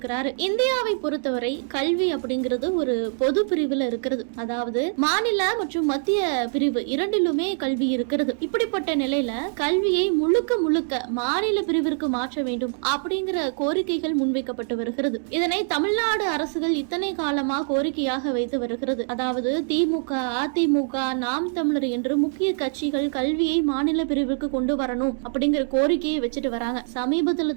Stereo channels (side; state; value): left; silent; digital silence